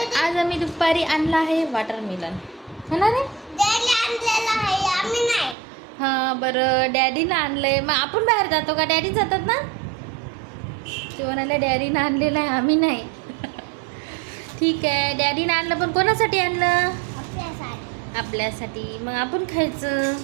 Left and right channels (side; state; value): left; drops out; at 5.6 s